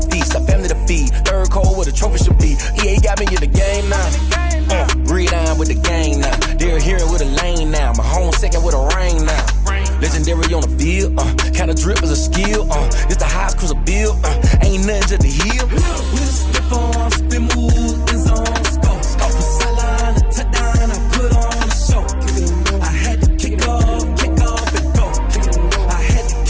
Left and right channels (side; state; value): both; identical; correlation 1.00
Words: feast. A family to feed. Third cold where the trophy should be. EA got me in the game now. Read on with the game now. They're hearing with a lane now. My home second with a rain now. Legendary on the field. Kinda drip is a skill. It's the highest cruiser bill. Ain't nothing just to heal. With a stiff on, spin move, in zone, scope. Scope for sideline, a touchdown, I put on a show. I had to kick off and go. I had to